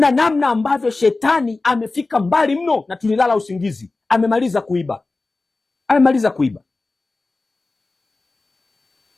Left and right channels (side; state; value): right; quieter; 3.4 dB